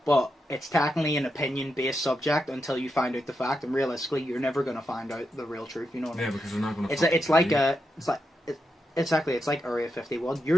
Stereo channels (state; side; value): normal; both; correlation 0.85